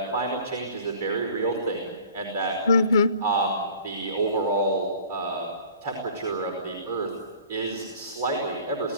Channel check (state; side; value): inverted; both; correlation -0.48